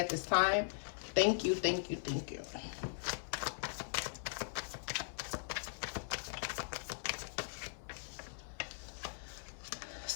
this time? Thank you, thank you, thank you.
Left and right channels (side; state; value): right; silent; 51 dB below the other